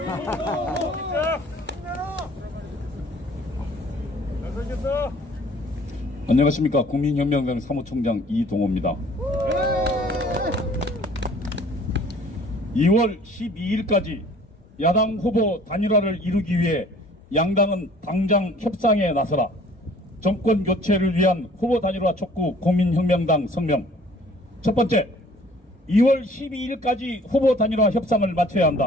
안녕하십니까. 국민혁명당 사무총장 이동호입니다. 2월 12일까지 야당 후보 단일화를 이루기 위해 양당은 당장 협상에 나서라. 정권 교체를 위한 후보 단일화 촉구 국민혁명당 성명. 첫 번째, 2월 12일까지 후보 단일화 협상을 마쳐야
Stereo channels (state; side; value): normal; both; correlation 0.53